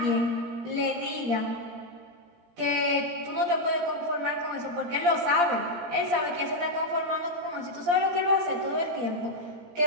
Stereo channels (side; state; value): left; late; 17 ms